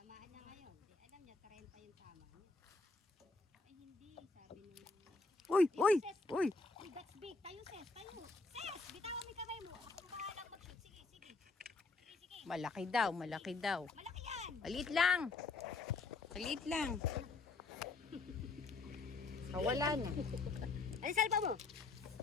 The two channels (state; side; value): quieter; right; 3.8 dB